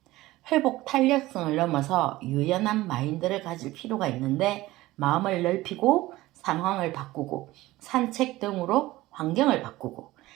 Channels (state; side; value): quieter; left; 17.8 dB